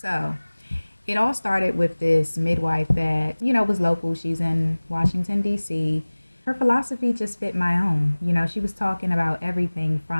it all started with this midwife that, was local. She's in Washington, D.C. Her philosophy just fit my own. She was talking about everything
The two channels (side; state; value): both; inverted; correlation -1.00